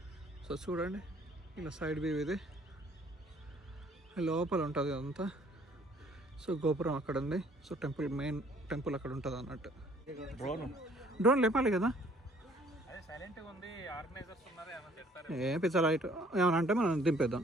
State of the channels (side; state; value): both; normal; correlation 0.59